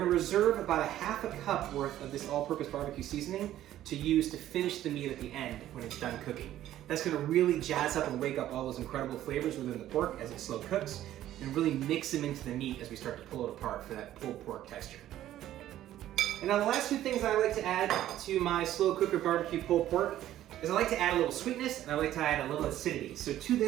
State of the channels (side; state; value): left; quieter; 12.9 dB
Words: reserve about a 1/2 cup worth of this all-purpose barbecue seasoning to use to finish the meat at the end when it's done cooking. That's gonna really jazz up and wake up all those incredible flavors within the pork as it slow cooks, and really mix them into the meat as we start to pull it apart for that pulled pork texture. And now the last 2 things I like to add to my slow cooker barbecue pulled pork is I like to add a little sweetness and I like to add a little acidity. So to